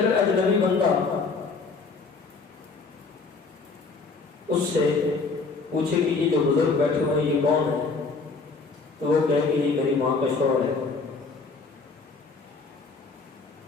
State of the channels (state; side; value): quieter; right; 4.3 dB